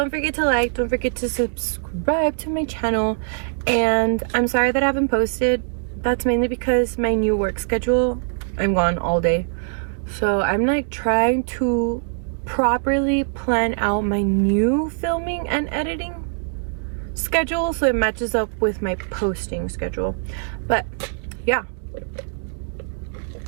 forget to like, don't forget to subscribe to my channel, and I'm sorry that I haven't posted. That's mainly because my new work schedule, I'm gone all day, so I'm like trying to properly plan out my new filming and editing schedule so it matches up with my posting schedule. But yeah,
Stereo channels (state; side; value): silent; left; digital silence